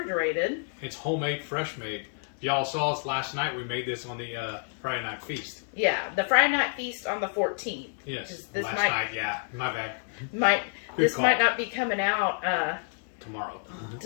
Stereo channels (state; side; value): silent; right; 59 dB below the other